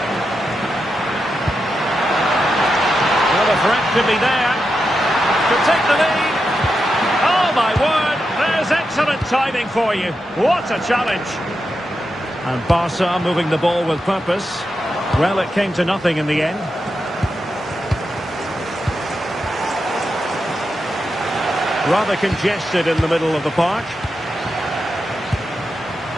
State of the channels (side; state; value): both; normal; correlation 0.87